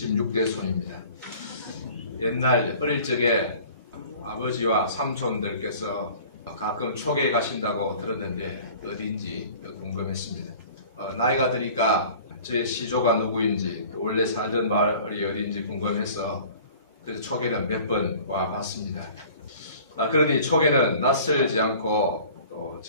손입니다. 옛날 어릴 적에 아버지와 삼촌들께서 가끔 초계에 가신다고 들었는데 어딘지 궁금했습니다. 나이가 드니까 제 시조가 누구인지 원래 살던 마을이 어딘지 궁금해서 그래서 초계는 몇 번 와봤습니다. 그러니 초계는 낯설지 않고 또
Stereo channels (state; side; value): inverted; both; correlation -0.47